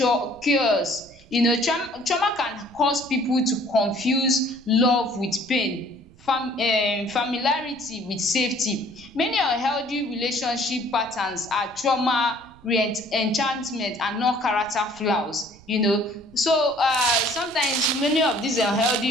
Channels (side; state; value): right; noise; rumble, 25 dB below the sound